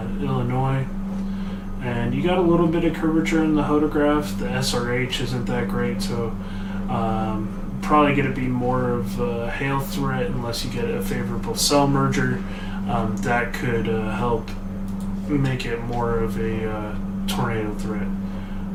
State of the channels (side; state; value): both; identical; correlation 1.00